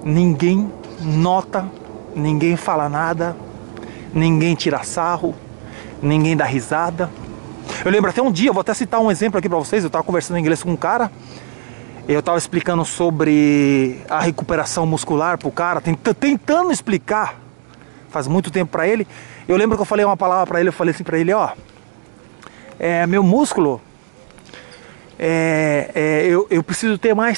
Ninguém nota, ninguém fala nada, ninguém tira sarro, ninguém dá risada. Eu lembro até um dia, eu vou até citar um exemplo aqui pra vocês. Eu tava conversando em inglês com um cara, eu tava explicando sobre a recuperação muscular pro cara, tentando explicar faz muito tempo pra ele. Eu lembro que eu falei uma palavra pra ele, eu falei assim pra ele, ó, meu músculo, eu preciso ter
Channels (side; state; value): left; silent; 64 dB below the other